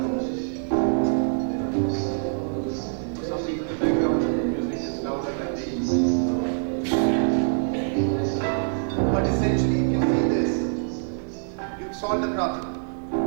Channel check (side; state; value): left; silent; 62 dB below the other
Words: For some reason the background music is louder than these. But essentially, if you see this, you've solved the problem.